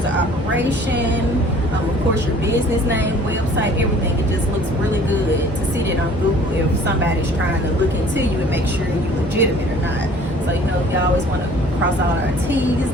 of operation, of course your business name, website, everything. It just looks really good to see that on Google if somebody's trying to look into you and make sure you're legitimate or not. So we always want to cross all our T's,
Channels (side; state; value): both; normal; correlation 0.52